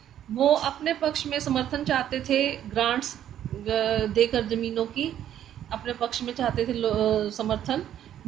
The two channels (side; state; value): left; quieter; 10.8 dB